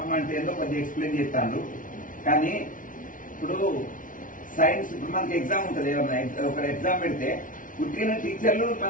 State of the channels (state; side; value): late; right; 0.38 ms